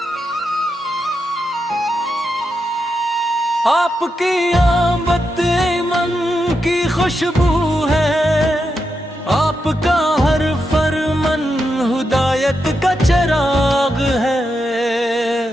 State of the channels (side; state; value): both; normal; correlation 0.86